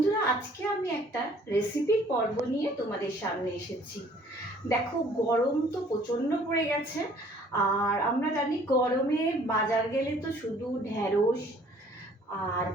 আজকে আমি একটা রেসিপির পর্ব নিয়ে তোমাদের সামনে এসেছি। দেখো, গরম তো প্রচণ্ড পড়ে গেছে, আর আমরা জানি গরমে বাজার গেলে তো শুধু ঢ্যাঁড়স আর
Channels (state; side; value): normal; both; correlation 0.57